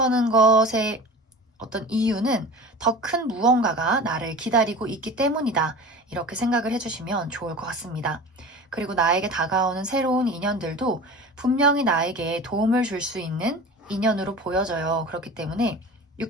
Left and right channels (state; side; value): normal; both; correlation 0.35